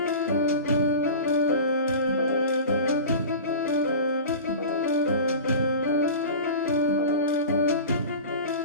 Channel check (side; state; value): both; inverted; correlation -0.33